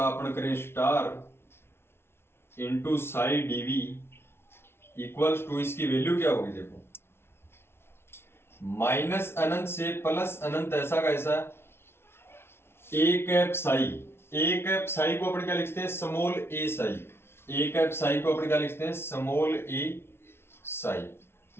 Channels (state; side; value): late; right; 0.12 ms